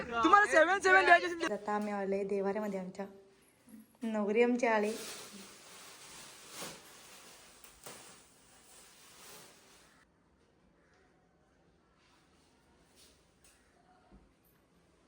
तुम्हाला 7-7 द्यायचे. आता आम्ही आले देवाऱ्यामध्ये, आमच्या नवरी आमचे आले.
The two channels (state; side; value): identical; both; correlation 1.00